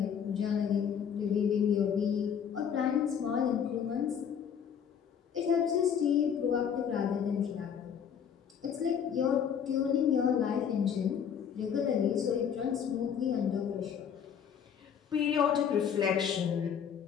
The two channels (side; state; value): right; quieter; 7.9 dB